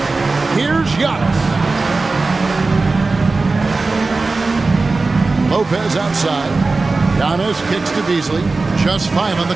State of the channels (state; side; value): quieter; left; 3.7 dB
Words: Here's Giannis. Lopez outside. Giannis kicks to Beasley. Just 5 on the